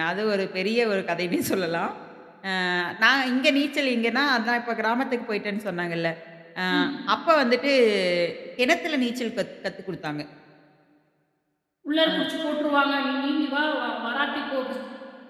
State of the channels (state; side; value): identical; both; correlation 1.00